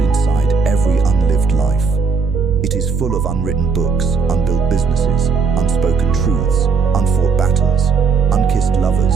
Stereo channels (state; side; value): quieter; left; 5.2 dB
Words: inside every unlived life. It is full of unwritten books, unbuilt businesses, unspoken truths, unfought battles, unkissed lovers,